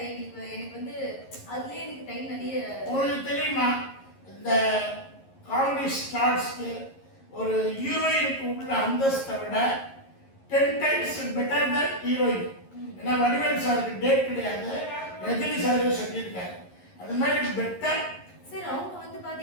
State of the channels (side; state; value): right; late; 11 ms